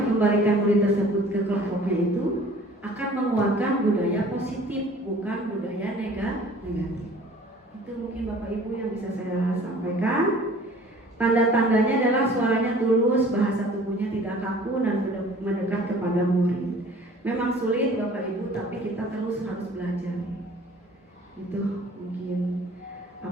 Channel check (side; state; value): both; normal; correlation 0.49